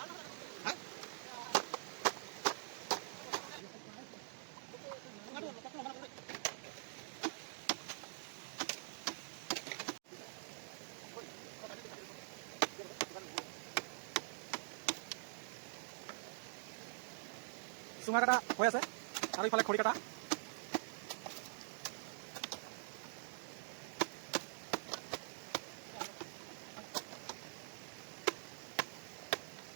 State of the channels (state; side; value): silent; left; digital silence